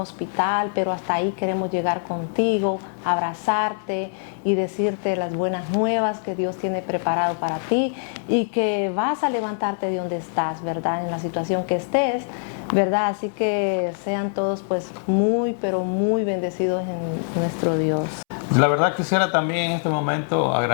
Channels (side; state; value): right; silent; 63 dB below the other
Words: pero hasta ahí queremos llegar contigo, abrazarte y decirte las buenas nuevas que Dios tiene preparado para ti y que vas a levantarte de donde estás, ¿verdad? En la situación que estés, ¿verdad? Así que sean todos pues muy, pero muy bendecidos en nuestro Dios. La verdad quisiera también en este momento